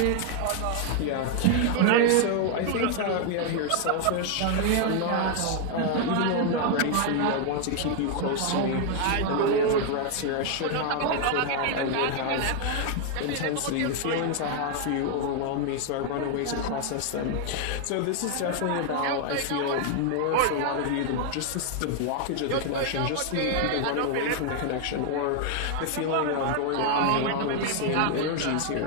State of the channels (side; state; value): both; different; correlation 0.00